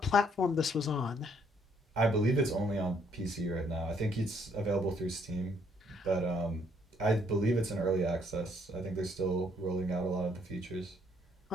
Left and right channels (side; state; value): both; normal; correlation 0.68